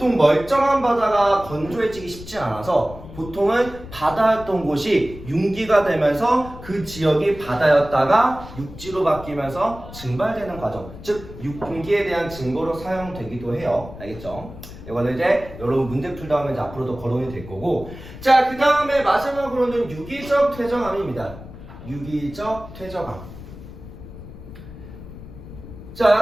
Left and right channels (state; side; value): noise; left; rumble, 15 dB below the sound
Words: 멀쩡한 바다가 건조해지기 쉽지 않아서 보통은 바다였던 곳이 융기가 되면서 그 지역이 바다였다가 육지로 바뀌면서 증발되는 과정, 즉 융기에 대한 증거로 사용되기도 해요. 알겠죠? 이거는 이제 여러분 문제 풀다 하면 이제 앞으로도 거론이 될 거고, 자, 그 다음에 마지막으로는 유기적 퇴적암입니다. 유기적 퇴적암.